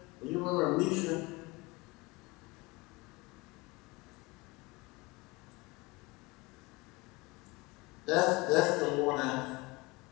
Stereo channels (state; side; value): quieter; right; 24.1 dB